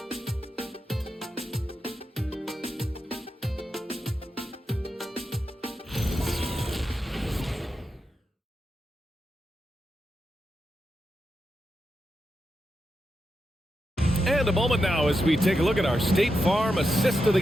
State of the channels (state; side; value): normal; both; correlation 0.88